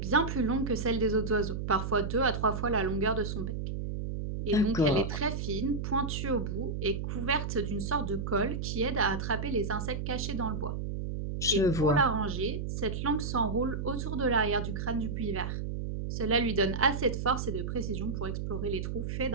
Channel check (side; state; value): right; noise; hum, 3 dB below the sound